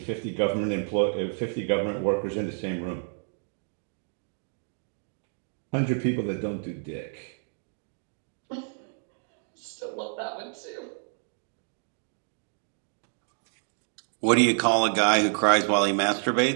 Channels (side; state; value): left; silent; 59 dB below the other